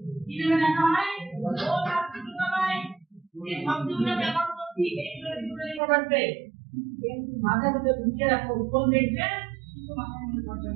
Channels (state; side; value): drops out; left; at 5.8 s